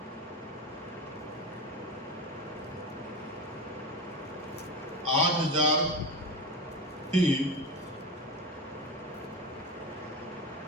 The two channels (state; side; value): normal; both; correlation 0.22